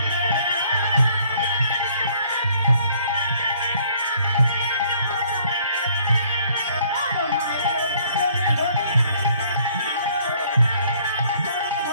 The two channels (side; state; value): both; inverted; correlation -0.61